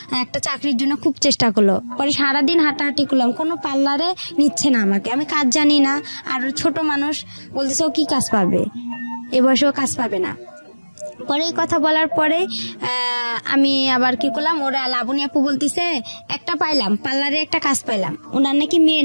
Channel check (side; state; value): both; inverted; correlation -1.00